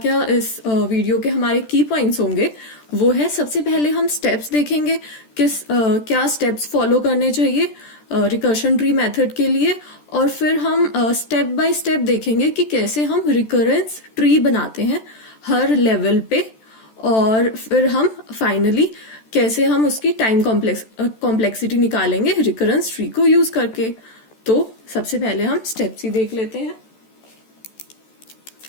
इस वीडियो के हमारे की पॉइंट्स होंगे वो है, सबसे पहले हम स्टेप्स देखेंगे क्या स्टेप्स फॉलो करने चाहिए रिकर्शन ट्री मेथड के लिए, और फिर हम स्टेप बाय स्टेप देखेंगे कि कैसे हम रिकरेंस ट्री बनाते हैं हर लेवल पे, और फिर हम फाइनली कैसे हम उसकी टाइम कॉम्प्लेक्सिटी निकालेंगे रिकरेंस ट्री को यूज करके। तो सबसे पहले हम स्टेप्स ही देख लेते हैं।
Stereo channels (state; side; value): late; right; 14 ms